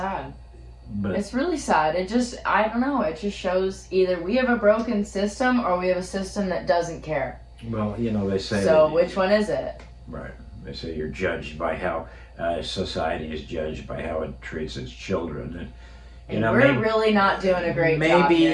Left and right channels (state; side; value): identical; both; correlation 1.00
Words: But it's really sad. I don't know. It just shows either we have a broken system or we have a system that doesn't care. Well, they say. So which one is it? Right. They say you're judged by how society is judged by how it treats its children. And we're really not doing a great job.